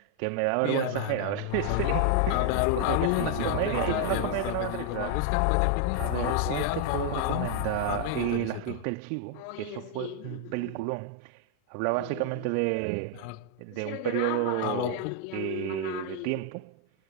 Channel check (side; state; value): both; different; correlation 0.00